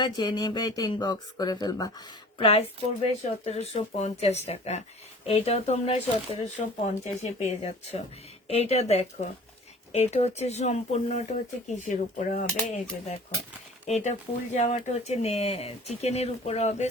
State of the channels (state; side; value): normal; both; correlation 0.46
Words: যে নেবে এটা ইনবক্স করে ফেলবা। প্রাইস পড়বে 1750 টাকা। এইটাও তোমরা 1750-এ পেয়ে যাচ্ছ। এইটা দেখো, এটা হচ্ছে সম্পূর্ণটা হচ্ছে কিসের উপরে হবে, এই যে দেখো, এটা ফুল জামাটা হচ্ছে চিকেনের উপরে হবে,